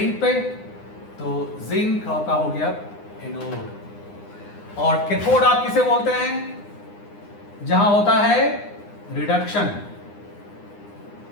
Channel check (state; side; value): late; right; 9.8 ms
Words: पे, तो जिंक आपका हो गया एनोड। और कैथोड आप किसे बोलते हैं? जहां होता है रिडक्शन।